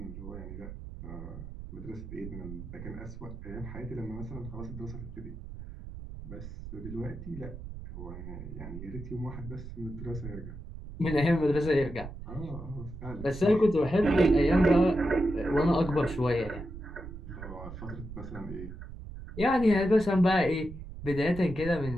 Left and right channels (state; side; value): noise; right; rumble, 11 dB below the sound